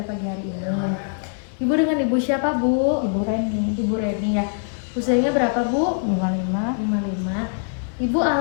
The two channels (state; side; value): silent; right; 64 dB below the other